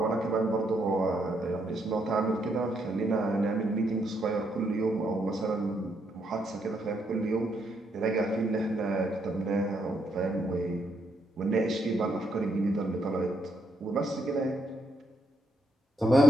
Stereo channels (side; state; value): both; normal; correlation 0.76